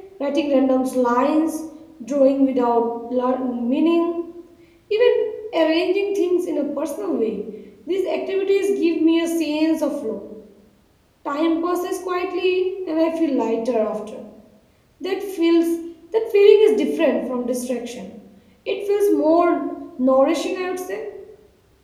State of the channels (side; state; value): both; identical; correlation 1.00